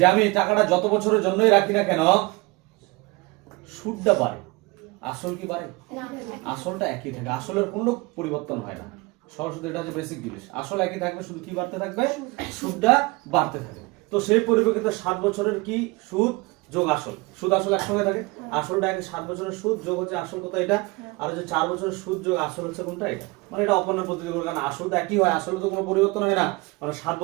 আমি টাকাটা যত বছরের জন্যই রাখি না কেন, সুদটা বাড়ে, আসল কি বাড়ে? আসলটা একই থাকে, আসলের কোনো পরিবর্তন হয় না। সরল এটা হচ্ছে বেসিক জিনিস, আসল একই থাকবে, শুধু কি বাড়তে থাকবে, সুদটা বাড়তে থাকবে। তো সেই পরিপ্রেক্ষিতে 7 বছরের কি সুদ যোগ আসল, সুদ আসল একসঙ্গে থাকে। আসলটা 7 বছরের সুদ যোগ হচ্ছে আসল কত এটা, আর হচ্ছে 4 বছরের সুদ যোগ আসল হচ্ছে কোনটা, এটা। মানে এটা অপূর্ণাঙ্গ পদ্ধতি করে, কারণ আসল তো একই হয়, আসলে তো কোনো পরিবর্তন হয় না। মানে 7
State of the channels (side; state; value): left; quieter; 24.8 dB